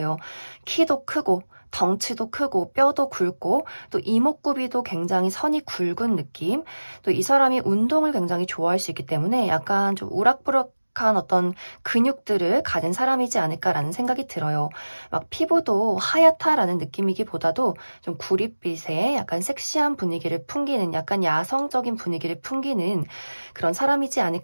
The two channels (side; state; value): both; inverted; correlation -1.00